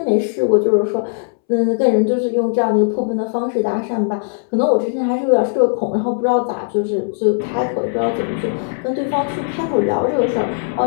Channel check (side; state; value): right; silent; 67 dB below the other